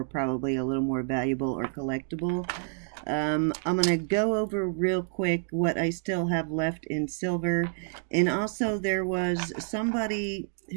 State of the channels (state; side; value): silent; left; 59 dB below the other